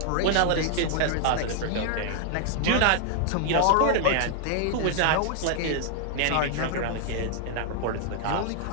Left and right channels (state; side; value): different; both; correlation 0.00